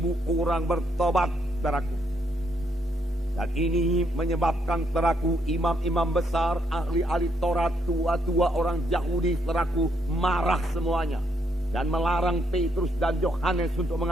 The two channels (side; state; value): both; normal; correlation 0.75